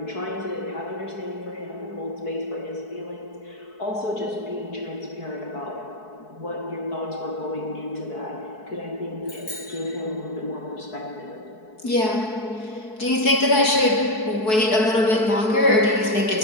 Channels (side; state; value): right; late; 4.6 ms